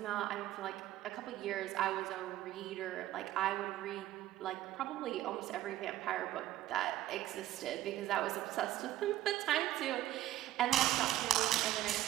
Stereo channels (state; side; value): quieter; left; 14.2 dB